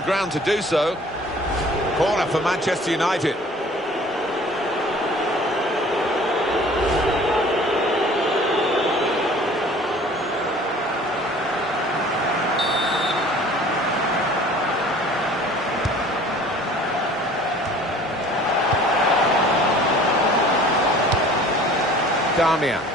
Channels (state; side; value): normal; both; correlation 0.49